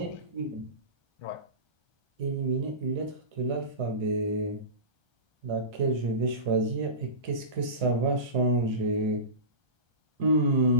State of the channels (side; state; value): left; late; 1.3 ms